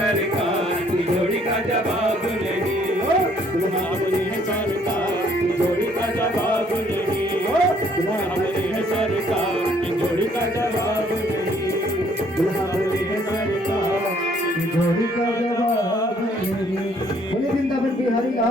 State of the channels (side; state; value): both; normal; correlation 0.63